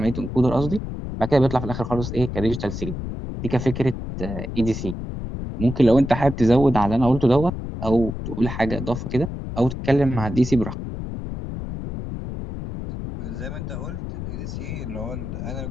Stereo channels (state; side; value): noise; left; rumble, 7 dB below the sound